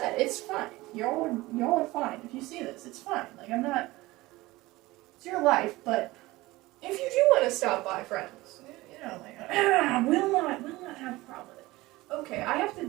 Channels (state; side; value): quieter; left; 19.6 dB